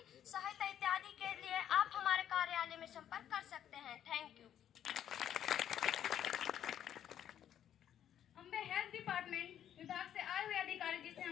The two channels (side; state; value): right; quieter; 10.2 dB